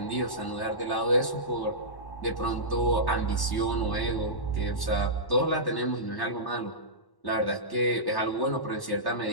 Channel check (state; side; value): late; right; 1.1 ms